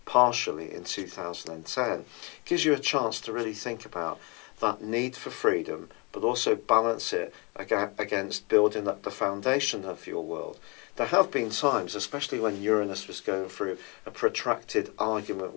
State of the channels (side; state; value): right; quieter; 29.7 dB